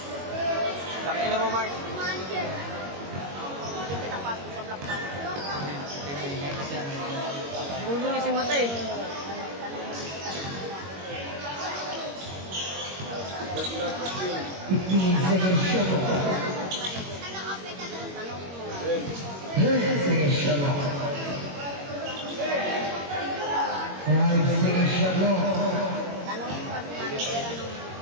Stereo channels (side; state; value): left; late; 21 ms